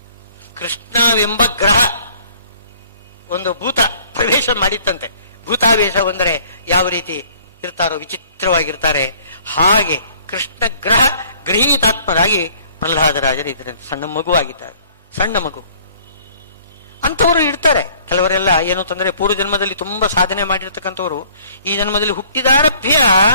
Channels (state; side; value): inverted; both; correlation -0.56